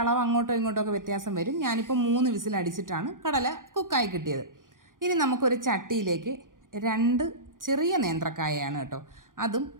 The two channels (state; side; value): late; left; 0.89 ms